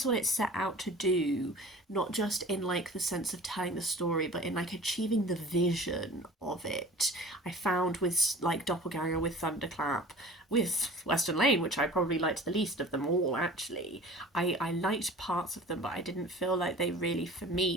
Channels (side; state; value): both; normal; correlation 0.42